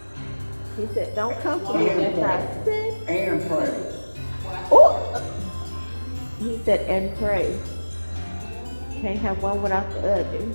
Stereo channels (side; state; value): both; inverted; correlation -1.00